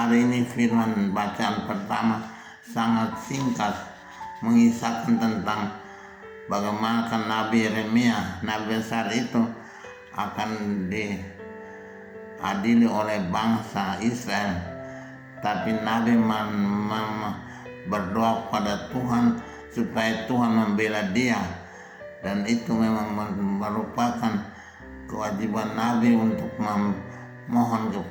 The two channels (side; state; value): both; identical; correlation 1.00